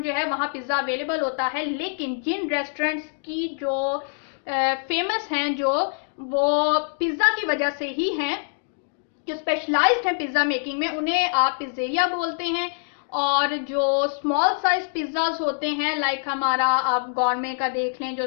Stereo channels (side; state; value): right; silent; digital silence